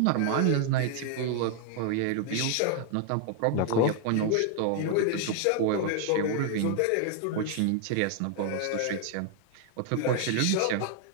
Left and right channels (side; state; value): both; different; correlation 0.00